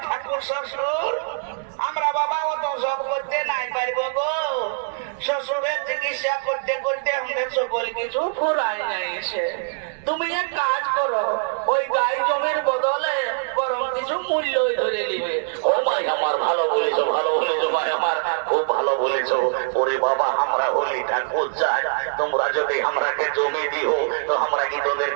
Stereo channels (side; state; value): left; silent; digital silence